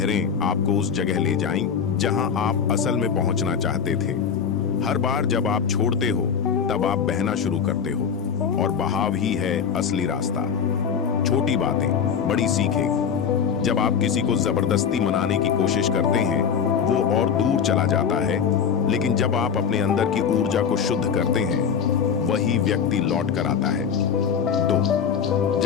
आपको उस जगह ले जाएं जहां आप असल में पहुंचना चाहते थे। हर बार जब आप छोड़ते हो, तब आप बहना शुरू करते हो, और बहाव ही है असली रास्ता। छोटी बातें बड़ी सीखें। जब आप किसी को जबरदस्ती मनाने की कोशिश करते हैं, वो और दूर चला जाता है, लेकिन जब आप अपने अंदर की ऊर्जा को शुद्ध करते हैं, वही व्यक्ति लौट कर आता है। 2,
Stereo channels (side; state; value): right; quieter; 7.1 dB